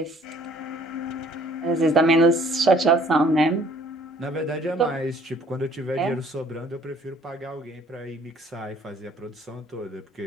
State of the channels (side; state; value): both; normal; correlation 0.58